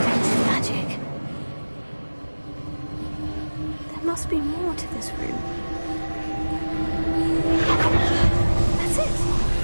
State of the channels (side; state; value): both; inverted; correlation -1.00